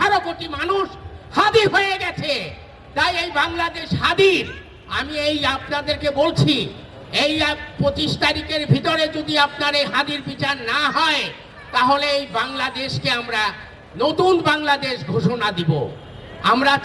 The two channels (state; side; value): identical; both; correlation 1.00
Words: কোটি মানুষ হাদি হয়ে গেছে। তাই এই বাংলাদেশ হাদির আমি আপনাদেরকে বলছি, এই 25 তারিখের ভিতরে যদি আপনার এই হাদির বিচার না হয় তাহলে এই বাংলাদেশকে আমরা নতুন বাংলাদেশ ঘোষণা দিব। আমরা